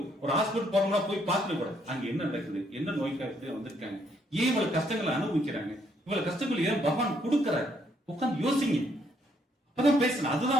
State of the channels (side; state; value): both; normal; correlation 0.70